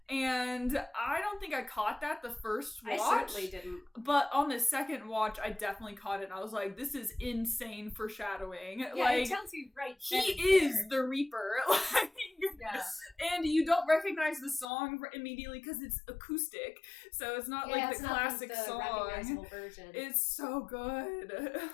And I don't think I caught that the first watch. I certainly didn't. But on the second watch, I definitely caught it. And I was like, this is insane foreshadowing. Yeah, like, it tells you right he is the Reaper. Like, yeah. And you don't recognize the song immediately because it's acoustic. So it's not like the classic the song. Recognizable version. It's so good.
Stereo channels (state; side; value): drops out; right; at 14.7 s